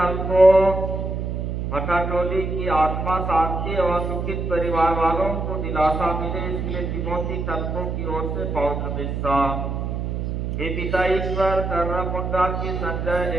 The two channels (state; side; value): noise; right; hum, 3 dB below the sound